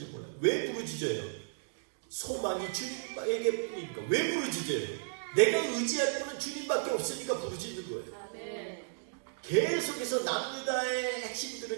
몰라요. 왜 부르짖어요? 소망이 주님에게 뿐이니까. 왜 부르짖어요? 내가 의지할 분은 주님밖에 없으니까 부르짖는 거예요. 계속해서 남유다의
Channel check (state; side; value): silent; left; digital silence